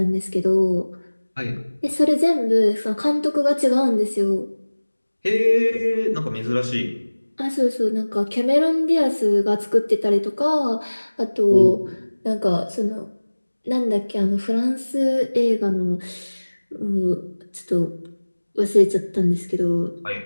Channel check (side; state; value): both; inverted; correlation -1.00